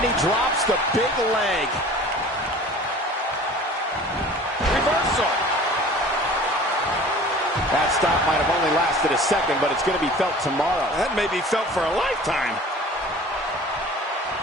he drops the big leg. Reversal. That stop might have only lasted a second, but it's going to be felt tomorrow. That may be felt for a lifetime.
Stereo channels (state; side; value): normal; both; correlation 0.44